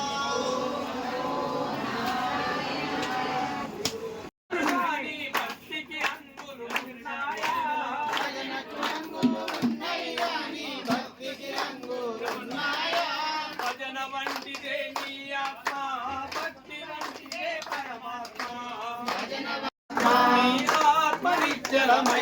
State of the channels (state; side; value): identical; both; correlation 1.00